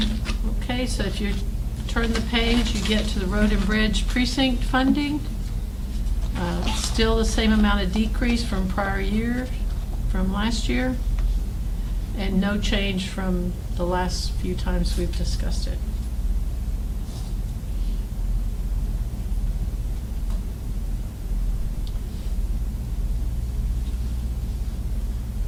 Okay, so if you turn the page, you get to the road and bridge precinct funding. Still the same amount of decrease from last year, and no change from the last few times we've discussed it.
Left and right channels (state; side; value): identical; both; correlation 1.00